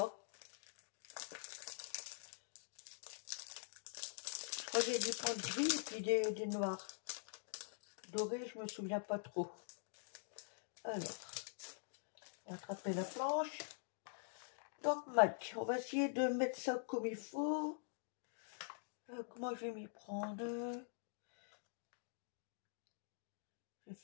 Je crois que j'ai du point de gris et puis des noirs. Doré, je me souviens pas trop. Alors, on va attraper la planche. Donc, Mac, on va essayer de mettre ça comme il faut. Comment je vais m'y prendre? Je vais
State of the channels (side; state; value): right; silent; digital silence